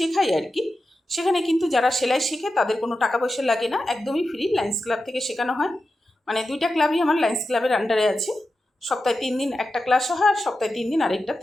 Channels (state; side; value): normal; both; correlation 0.91